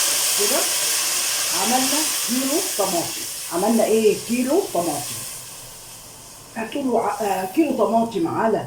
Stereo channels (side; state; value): both; identical; correlation 1.00